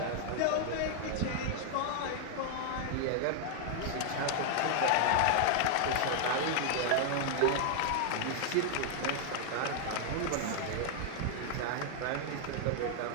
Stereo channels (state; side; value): different; both; correlation 0.00